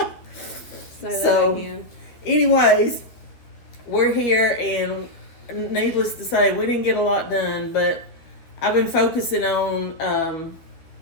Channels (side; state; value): right; late; 12 ms